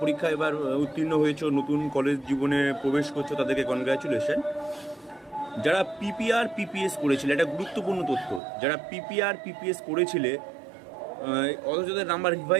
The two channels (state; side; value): drops out; left; at 8.4 s